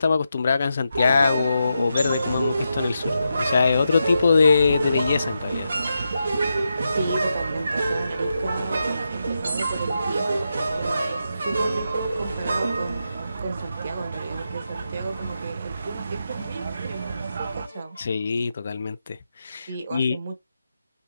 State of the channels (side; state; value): both; inverted; correlation -0.86